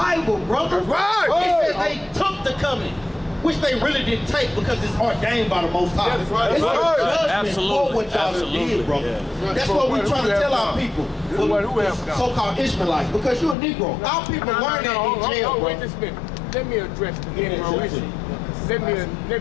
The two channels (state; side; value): drops out; right; at 13.6 s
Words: brother. Right. It says they took the covenant, which they really didn't take because it's ordained by the Most High. That's right. It's That's a right. judgment Absolutely. for what y'all did, brother. Yeah. That's what we're trying to tell our people. Who have done? So-called Ishmaelites, because you're a Negro. Our people learn that in jail, wait bro. just a minute. Let me address the Negro issue.